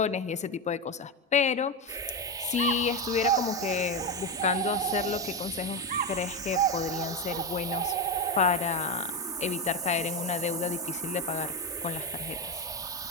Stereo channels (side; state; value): both; normal; correlation 0.12